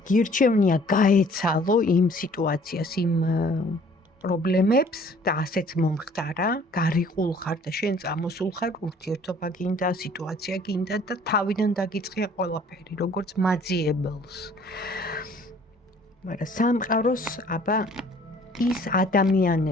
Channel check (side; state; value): both; normal; correlation 0.55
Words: გირჩევნია გაეცალო იმ სიტუაციას, იმ პრობლემებს და ასეც მომხდარა, გარიყულ ხარ და შენ წამოსულ ხარ, ურთიერთობა გინდა, სიტუაცია გინდა და თავიდან დაგიწყია ყველაფერი, როგორც მაძიებელს. მაგრამ სამყაროს აბა ის